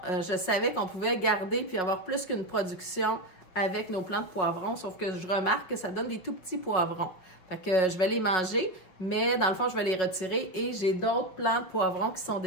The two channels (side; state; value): right; late; 5.4 ms